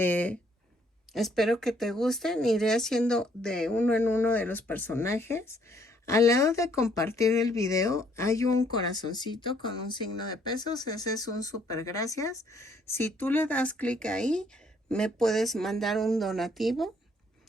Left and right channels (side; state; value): both; normal; correlation 0.66